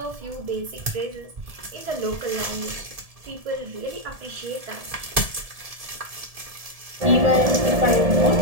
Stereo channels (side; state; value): left; late; 1.7 ms